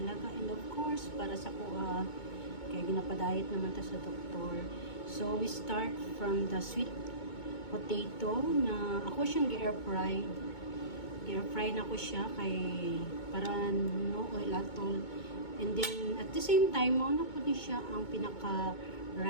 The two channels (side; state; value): right; late; 2.2 ms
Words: alaga and of course para sa kuha. Kaya ginapadayet naman ta sa doktor. So we start from the sweet potato na ako siyang gi-air fry. I-air fry na ko siya kay para no oil at all. And then at the same time, mao na po din siya ang pinaka